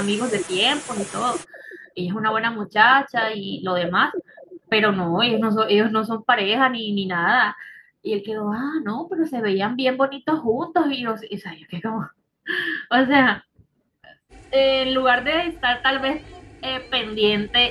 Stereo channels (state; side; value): identical; both; correlation 1.00